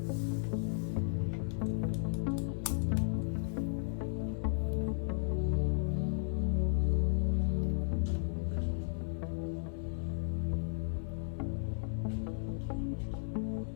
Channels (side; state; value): right; silent; digital silence